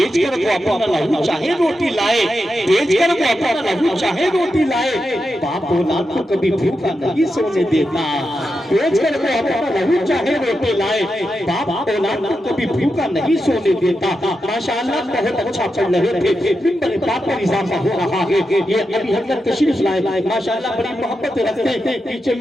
कर वो अपना लहू चाहे रोटी लाए, बेच कर वो अपना लहू चाहे रोटी लाए। बाप औलाद को कभी भूखा नहीं सोने देता। बेच कर वो अपना लहू चाहे रोटी लाए, बाप औलाद को कभी भूखा नहीं सोने देता। माशाअल्लाह बहुत अच्छा पढ़ रहे थे, मिंबर बाप पर इजाफा हो रहा है। ये अभी हजरत तशरीफ लाए, माशाअल्लाह बड़ी मोहब्बत रखते हैं। पीछे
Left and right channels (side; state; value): both; normal; correlation 0.88